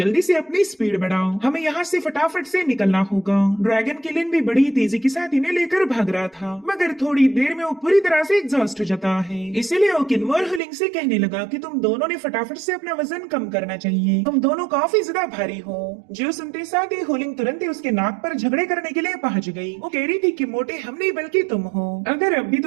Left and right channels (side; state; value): left; drops out; at 10.6 s